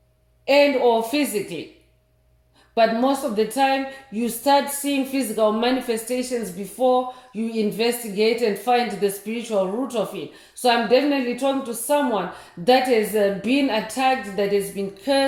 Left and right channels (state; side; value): identical; both; correlation 1.00